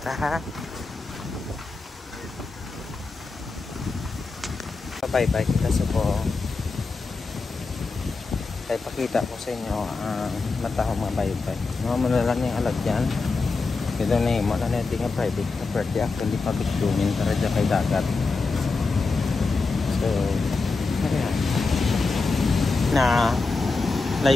ha. Pabaybay kita sa po. Kaya pakita ko sa inyo ang matahong mga baybay. Mga malalang yung alagyan. Ito na yung mga natin nga private property. Actually, pabitumin para dyan kay dagat. So, ayan. Na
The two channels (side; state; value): right; quieter; 4.0 dB